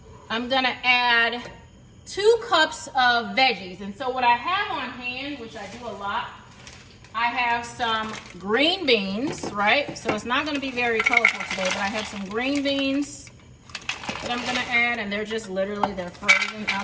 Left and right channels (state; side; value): identical; both; correlation 1.00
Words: I'm gonna add 2 cups of veggies. And so what I have on hand, which I do a lot, I have some green beans, right? So it's not gonna be very colorful today, but I have some green beans that I'm gonna add, and they're just literally, they're frozen